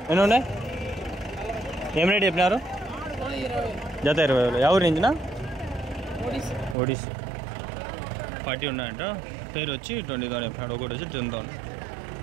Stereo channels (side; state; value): left; drops out; at 6.8 s